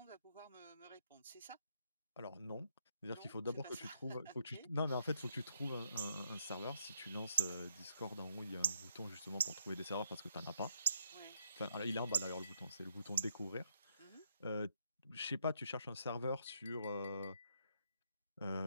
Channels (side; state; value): both; inverted; correlation -0.73